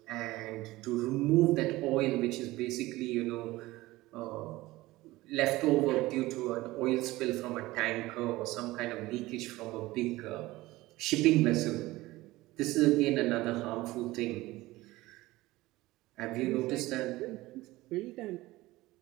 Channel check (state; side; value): quieter; left; 18.7 dB